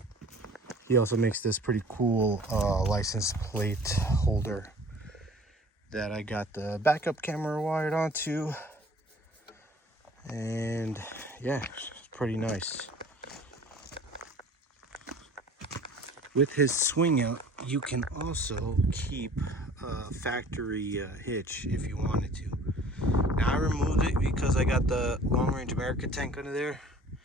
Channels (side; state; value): both; normal; correlation 0.49